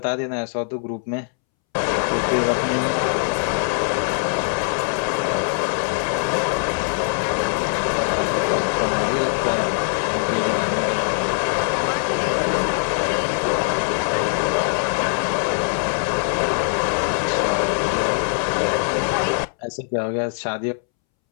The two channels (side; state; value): right; silent; 64 dB below the other